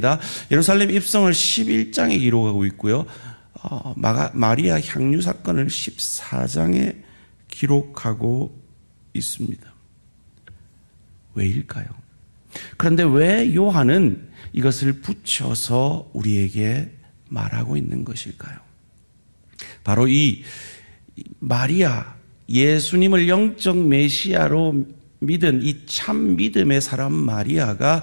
예루살렘 입성을 11장에 기록하고 있고요. 마리아 향유 사건을 14장에 기록하고 있습니다. 왜일까요? 그런데 왜 요한은 이것을 붙여서 우리에게 말하고 있는 것일까요? 바로 이 마리아, 예수님을 영적 메시아로 믿은 이 참 믿음의 사람 마리아가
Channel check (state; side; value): inverted; both; correlation -1.00